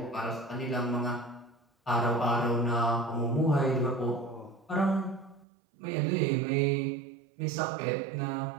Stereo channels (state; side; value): drops out; left; at 5.5 s